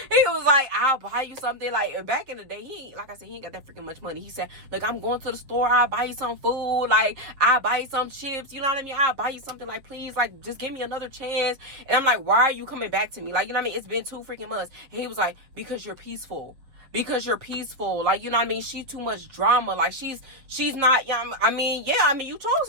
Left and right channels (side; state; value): left; late; 7.2 ms